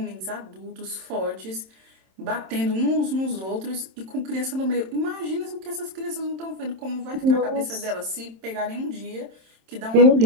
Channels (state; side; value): late; left; 27 ms